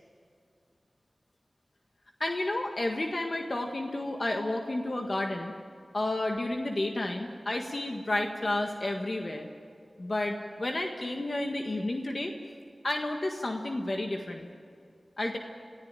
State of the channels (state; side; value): normal; both; correlation 0.97